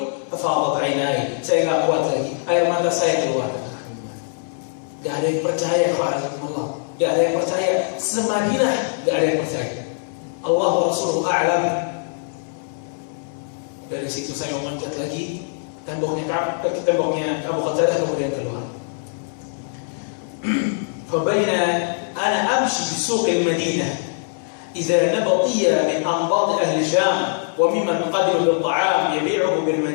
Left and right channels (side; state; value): right; silent; 60 dB below the other